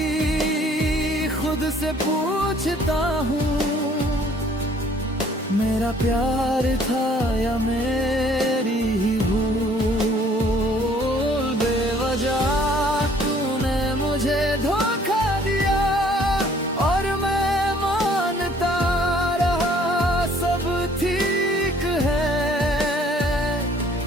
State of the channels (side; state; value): both; normal; correlation 0.58